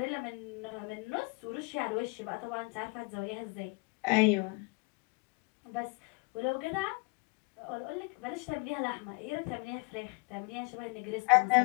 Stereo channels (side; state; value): right; quieter; 29.2 dB